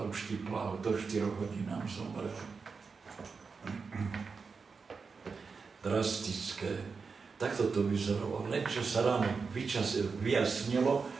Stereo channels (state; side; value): quieter; left; 5.0 dB